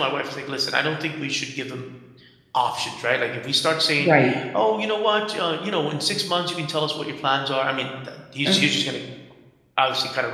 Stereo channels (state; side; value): identical; both; correlation 1.00